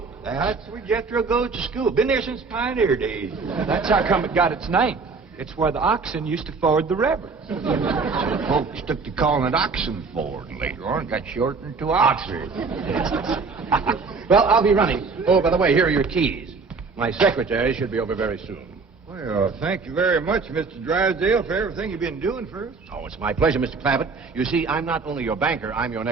That's where Jethro goes to school. Been there since pioneer days. That's how come it got its name. It's where the oxen used to ford the river. So folks took to calling it Oxen Ford, and later on got shortened to Oxford. Well, I'll be running. Oh, by the way, here are your keys. My secretary should be over very soon. Well, thank you very much, Mr. Drysdale, for everything you've been doing for us. Oh, it's my pleasure, Mr. Clampett. You see, I'm not only your banker, I'm your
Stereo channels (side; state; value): left; quieter; 4.5 dB